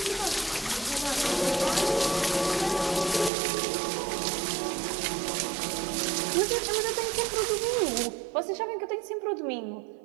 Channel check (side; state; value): left; drops out; at 3.3 s